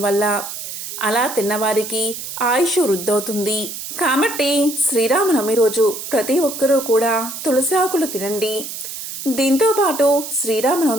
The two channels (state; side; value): noise; right; hiss, 8 dB below the sound